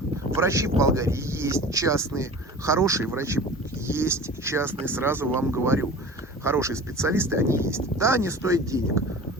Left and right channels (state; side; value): normal; both; correlation 0.38